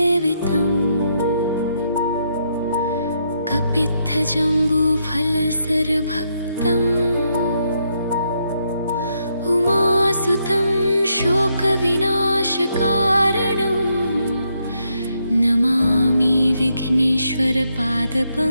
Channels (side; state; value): both; inverted; correlation -0.78